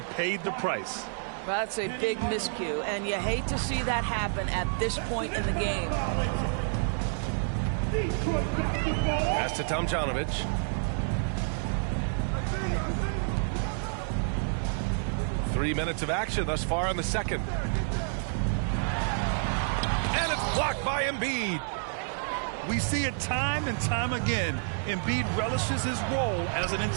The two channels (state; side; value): silent; left; 58 dB below the other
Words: paid the price. That's a big miscue, and you hate to see that happen at this point in the game. Pass to Tomjanovich. Three minutes of action thus far in the second. And it's blocked by Embiid. We see it time and time again. Embiid relishes his role as an